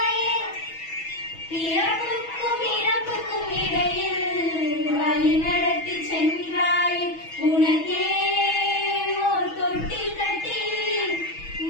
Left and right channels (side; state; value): right; late; 6.2 ms